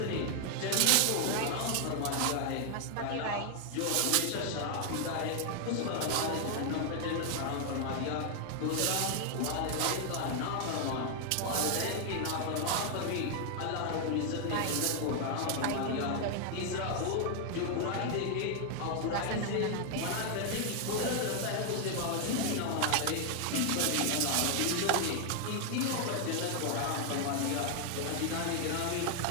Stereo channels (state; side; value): different; both; correlation 0.00